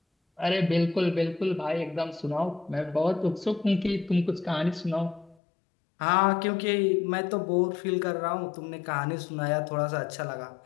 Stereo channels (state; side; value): drops out; right; at 5.4 s